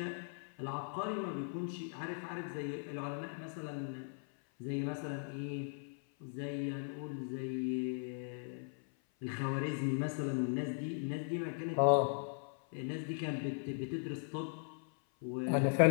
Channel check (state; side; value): silent; right; 52 dB below the other